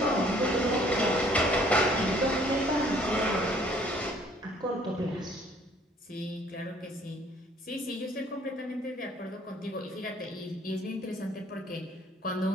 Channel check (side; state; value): both; normal; correlation 0.59